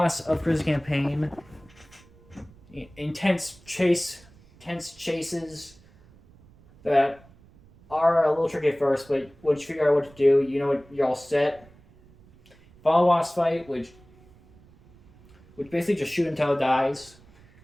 of Chris's campaign. Intense chases that are a little tricky at first, but once you figure out what to do, you know what you're all set. Final boss fight, which basically just shoot until it dies.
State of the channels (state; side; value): noise; right; rumble, 26 dB below the sound